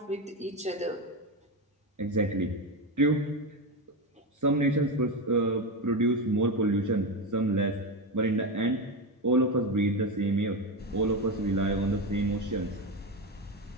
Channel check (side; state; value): both; normal; correlation 0.15